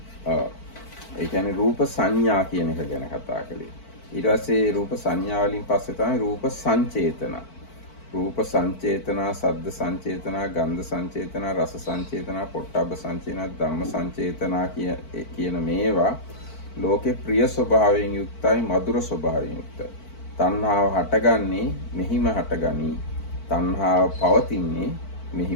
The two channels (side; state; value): right; late; 4.5 ms